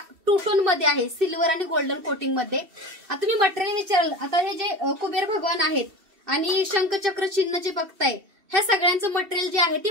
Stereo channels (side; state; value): left; late; 2.7 ms